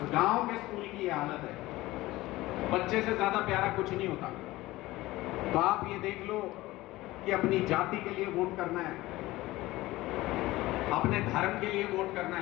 गांव के स्कूल की ये हालत है, बच्चे से ज्यादा प्यारा कुछ नहीं होता। तो आप ये देख लो कि अपनी जाति के लिए वोट करना है, अपने धर्म के लिए वोट करना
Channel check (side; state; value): right; quieter; 18.3 dB